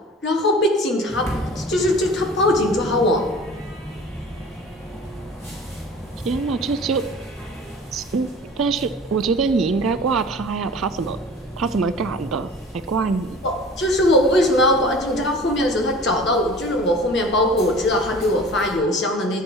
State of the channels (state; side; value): normal; both; correlation 0.42